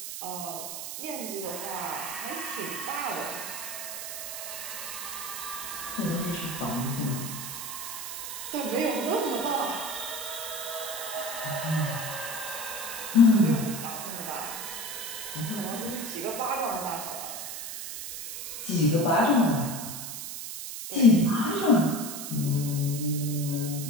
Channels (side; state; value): right; noise; hiss, 7 dB below the sound